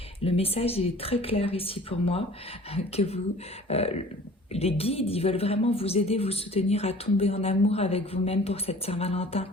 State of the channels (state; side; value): normal; both; correlation 0.47